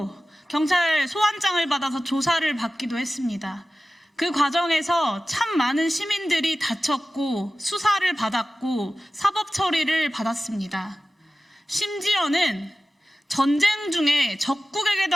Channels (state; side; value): normal; both; correlation 0.95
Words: 경찰 소환장을 받아서 조사를 받기도 했습니다. 그 과정에서 참 많은 시민들이 다쳤고 수사를 받았고 사법 처리를 받았습니다. 심지어는 전쟁 중에 적국에게도